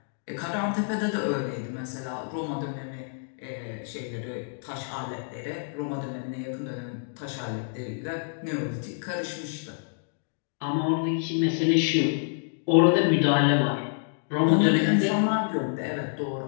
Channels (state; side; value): silent; right; digital silence